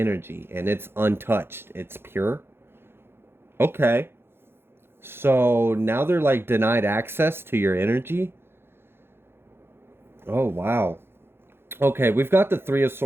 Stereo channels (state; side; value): late; left; 0.11 ms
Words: and it's untouched. It's pure. Okay. So now they're like denied access to your energy. Oh, wow. Okay, we've got the Three of